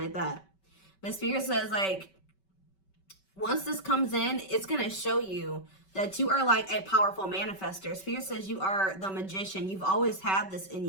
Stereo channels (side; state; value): right; late; 5.2 ms